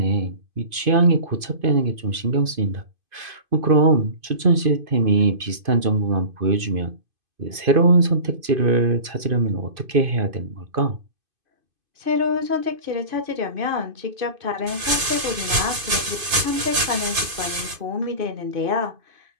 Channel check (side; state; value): left; late; 2.5 ms